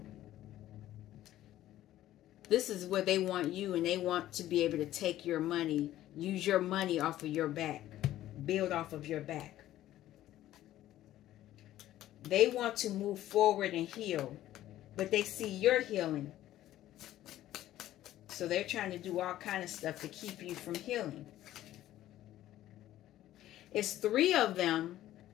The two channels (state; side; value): quieter; right; 13.7 dB